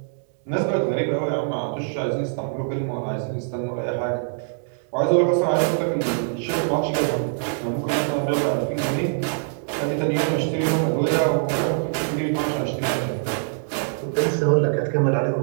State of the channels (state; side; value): silent; left; 63 dB below the other